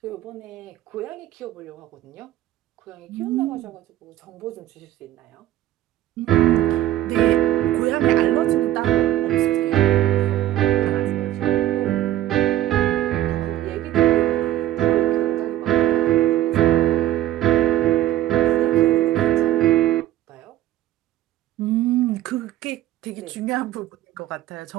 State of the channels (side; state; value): left; quieter; 13.9 dB